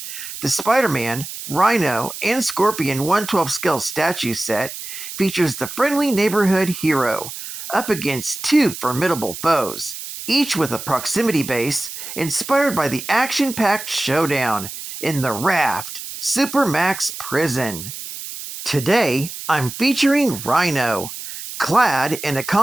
The Spider-Man, Rhino, and Scorpion 1/12 scale statue set features the friendly neighborhood hero up against two formidable foes, each with a proximity base inspired by the action-packed showdown in the Raft Supermax Prison. Today, I'm featuring Rhino, clad in a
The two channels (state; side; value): noise; right; hiss, 10 dB below the sound